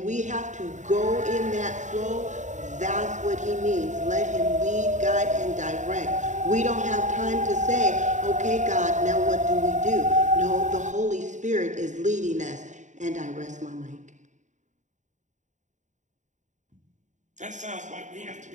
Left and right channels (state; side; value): late; left; 0.35 ms